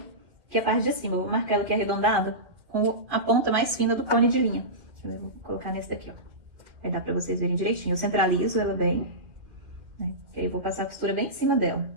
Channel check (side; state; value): left; late; 2.2 ms